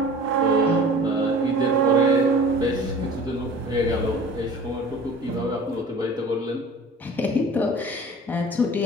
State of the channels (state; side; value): normal; both; correlation 0.43